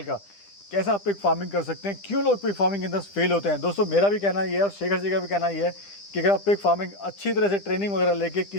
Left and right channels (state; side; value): late; right; 10 ms